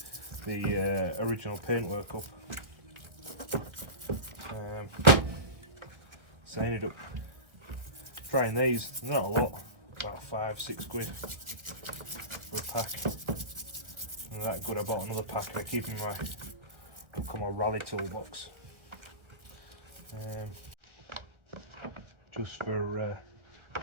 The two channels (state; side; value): late; left; 1.6 ms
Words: the original paintwork up. So I ended up trying these. Not a lot, about 5-6 quid for a pack. And that good, I bought another pack and I keep in my rally toolbox. Just for